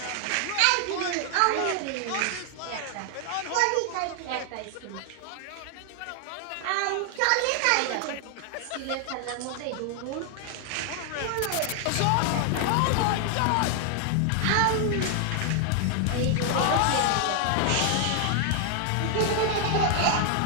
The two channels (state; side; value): different; both; correlation 0.00